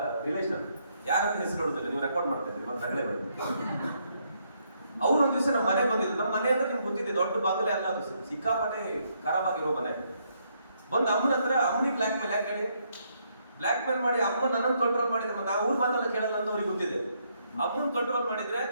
ರಿಲೇಷನ್, ಯಾರಂತ ಹೆಸರು ಹೇಳುದಿಲ್ಲ, ನೀವು ರೆಕಾರ್ಡ್ ಮಾಡ್ತಾ ಇದ್ರಿ ಮತ್ತೆ ನಗಳೆ ಬರ್ತದೆ. ಅವ್ರು ಒಂದ್ ದಿವಸ ನಮ್ಮ ಮನೆ ಬಂದಿದ್ರು. ನಮ್ಮ ಮನೆ ಅಂದ್ರೆ ನಿಮ್ಗೆ ಗೊತ್ತಿದೆ, ದೊಡ್ಡ ಬಾಗಿಲೇ ಅಲ್ಲ ಅದು, ಸಿಕ್ಕಾಪಟ್ಟೆ ಖರಾಬ್ ಆಗಿರೋ ಮನೆ. ಬಂದು ಅಮ್ಮನ ಹತ್ರ, ಅಮ್ಮನಿಗೆ ಬ್ಲಾಕ್ ಮೇಲ್ ಯಾಕೆ ಹೇಳಿ, ಬ್ಲಾಕ್ ಮೇಲ್ ಮಾಡಿ ಅಮ್ಮ ನನ್ನನ್ನು ಕಂಟ್ರೋಲ್ ಮಾಡಿದ್ರೆ ನಾವು ಊರ್ ಮಾತೆಲ್ಲ ಕೇಳಲ್ಲ ಅಂತ ಅವ್ರಿಗೆ ಗೊತ್ತಿದೆ. ಅಮ್ಮನ್ ಕಂಟ್ರೋಲ್ ಮಾಡಿದ್ರೆ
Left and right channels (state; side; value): inverted; both; correlation -0.74